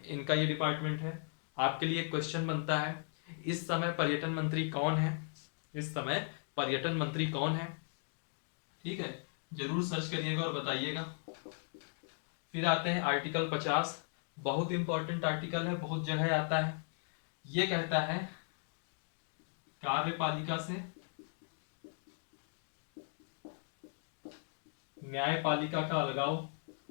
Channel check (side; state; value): right; silent; 53 dB below the other